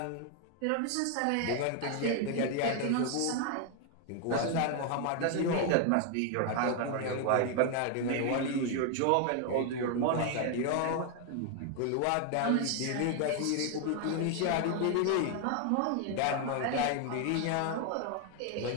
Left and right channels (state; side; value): different; both; correlation 0.01